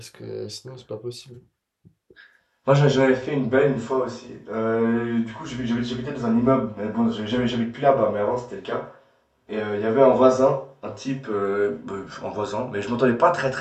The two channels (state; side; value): identical; both; correlation 1.00